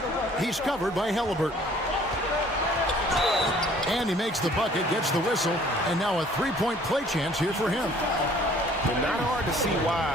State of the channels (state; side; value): normal; both; correlation 0.55